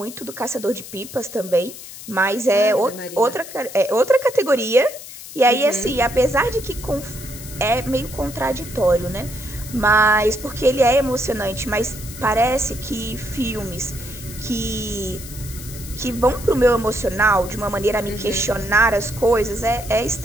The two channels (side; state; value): left; noise; hiss, 14 dB below the sound